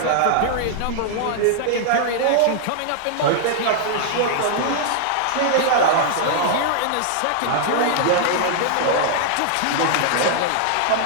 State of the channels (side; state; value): both; different; correlation -0.01